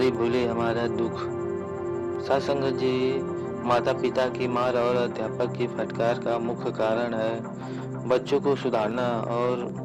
भूले हमारा दुख। साथ संगत जी, माता पिता की मार और अध्यापक की फटकार का मुख्य कारण है बच्चों को सुधारना और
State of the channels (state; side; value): identical; both; correlation 1.00